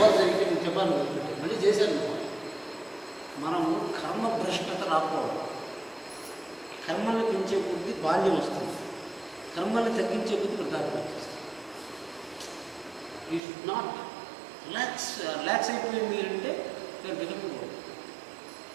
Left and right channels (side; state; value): left; drops out; at 13.4 s